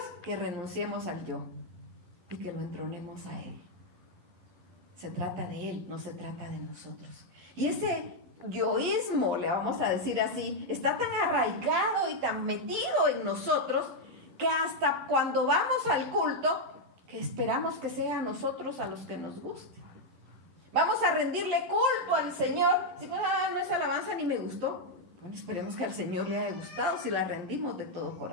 Que renunciemos al yo y que lo entronemos a Él. Se trata de Él, no se trata de nosotros. Y ese yoísmo, le vamos a decir así, está tan arraigado y tan metido en nosotros que hasta cuando vamos al culto, que esperamos que sea a nosotros a los que nos guste. Vamos a rendirle culto al Señor. Si no es alabanza ni me gustó, bueno, esperemos que al Señor le haya gustado si la rendimos de todo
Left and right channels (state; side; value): late; left; 11 ms